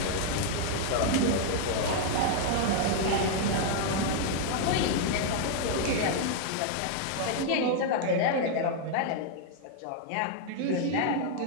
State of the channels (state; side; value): different; both; correlation 0.00